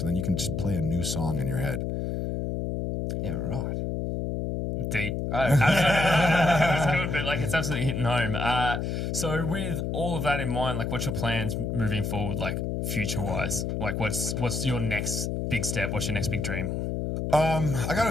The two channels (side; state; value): left; noise; hum, 2 dB below the sound